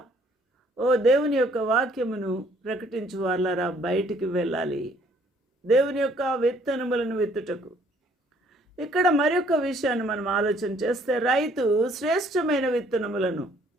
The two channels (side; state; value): both; normal; correlation 0.62